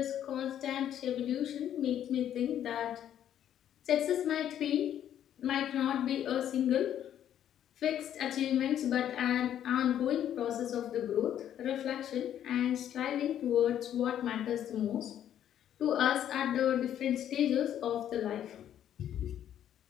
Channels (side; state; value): right; quieter; 10.5 dB